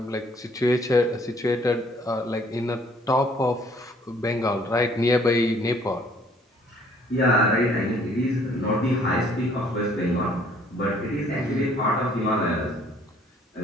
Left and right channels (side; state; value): both; normal; correlation 0.60